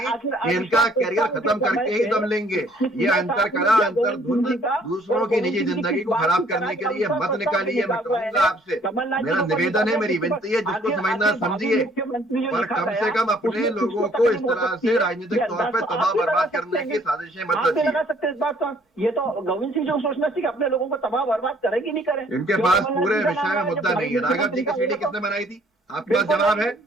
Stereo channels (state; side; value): normal; both; correlation 0.60